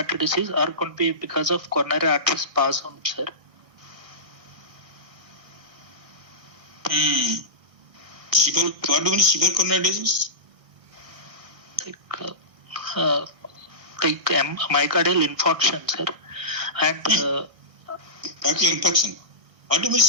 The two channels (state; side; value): late; left; 1.6 ms